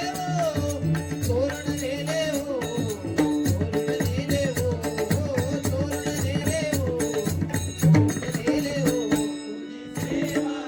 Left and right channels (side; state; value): both; identical; correlation 1.00